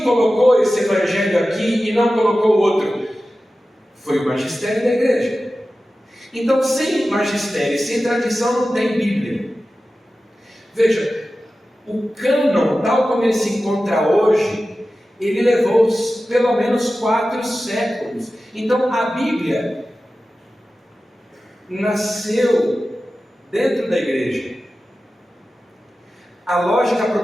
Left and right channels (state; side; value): normal; both; correlation 0.94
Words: colocou esse Evangelho aqui e não colocou outro? Foi o magistério da igreja. Então, sem magistério, sem tradição, não tem Bíblia. Veja, o cânon, tal como ele se encontra hoje, ele levou pelo menos 4 séculos. Então, a Bíblia nasceu dentro da igreja. A lógica